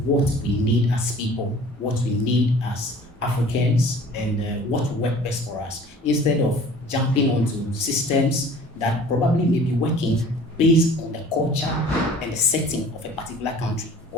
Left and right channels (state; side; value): normal; both; correlation 0.47